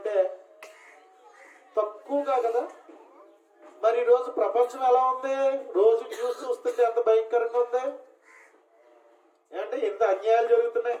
తక్కువగా కదా. మరి ఈరోజు ప్రపంచం ఎలా ఉంది? రోజు న్యూస్ చూస్తుంటే ఎంత భయంకరంగా ఉంది. అంటే ఎంత అన్యాయాలు జరుగుతున్నాయి,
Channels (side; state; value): both; identical; correlation 1.00